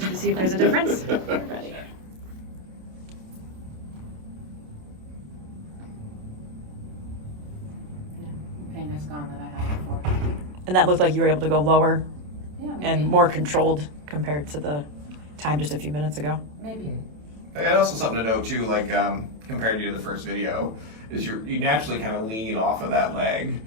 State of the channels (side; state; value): left; late; 27 ms